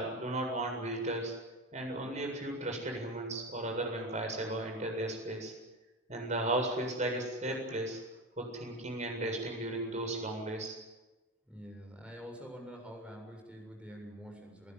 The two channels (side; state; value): both; normal; correlation 0.22